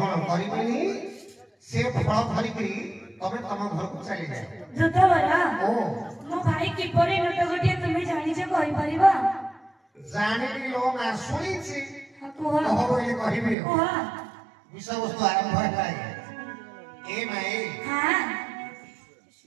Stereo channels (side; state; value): left; drops out; at 13.6 s